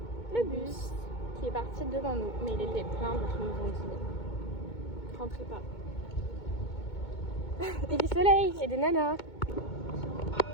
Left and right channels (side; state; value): right; late; 2.2 ms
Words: le bus qui est parti devant nous. Mais il était plein, donc ils nous ont dit rentrez pas. Et du soleil et des nanas.